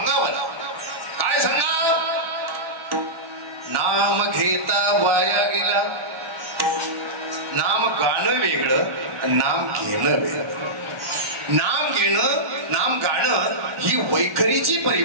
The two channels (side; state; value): left; late; 1.4 ms